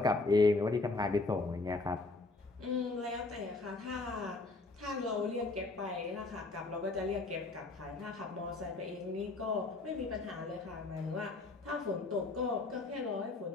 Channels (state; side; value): quieter; right; 3.4 dB